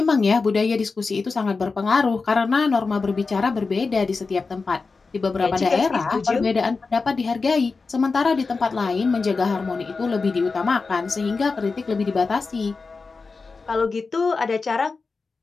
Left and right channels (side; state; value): right; quieter; 4.3 dB